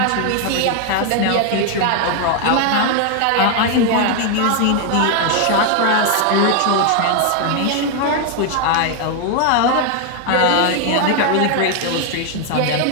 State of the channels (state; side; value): different; both; correlation 0.01